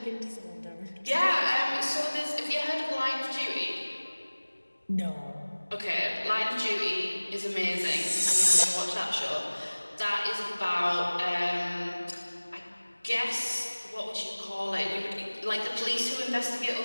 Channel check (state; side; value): inverted; both; correlation -1.00